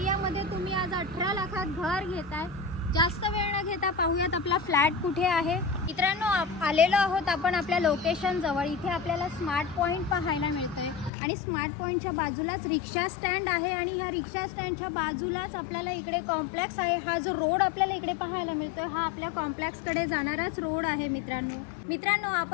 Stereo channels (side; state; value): right; drops out; at 11.1 s